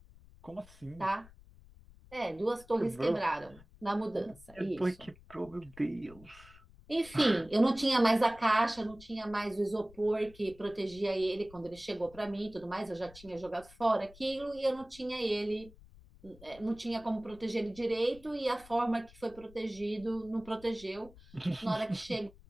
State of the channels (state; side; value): noise; left; rumble, 22 dB below the sound